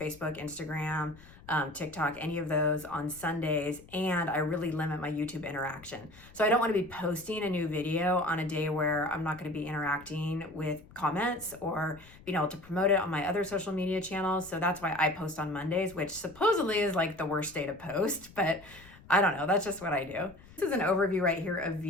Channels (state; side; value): noise; left; rumble, 22 dB below the sound